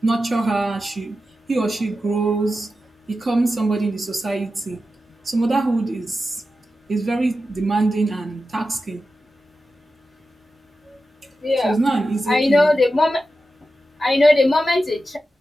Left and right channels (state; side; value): normal; both; correlation 0.91